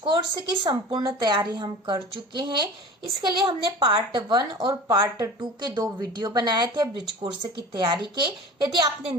की संपूर्ण तैयारी हम कर चुके हैं। इसके लिए हमने पार्ट 1 और पार्ट 2 के 2 वीडियो बनाए थे ब्रिज कोर्स की तैयारी के। यदि आपने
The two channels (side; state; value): both; normal; correlation 0.37